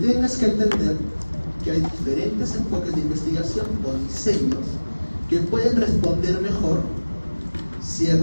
que entender que hay diferentes enfoques de investigación o diseños que pueden responder mejor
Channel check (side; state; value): both; inverted; correlation -1.00